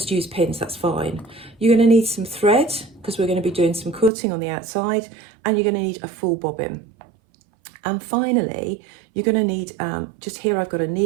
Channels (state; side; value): drops out; left; at 4.1 s